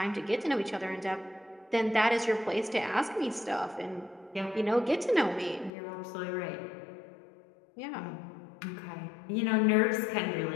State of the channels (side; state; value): right; drops out; at 5.7 s